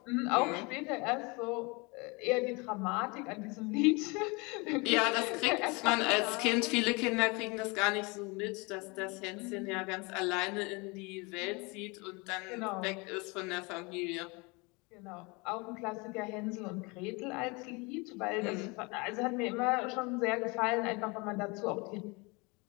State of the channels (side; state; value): right; quieter; 27.8 dB